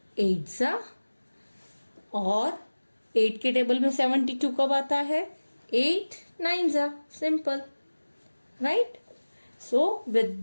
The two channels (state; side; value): inverted; both; correlation -1.00